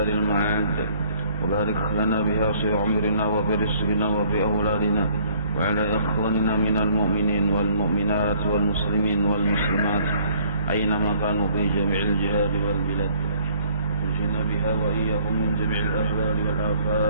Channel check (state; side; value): inverted; both; correlation -0.59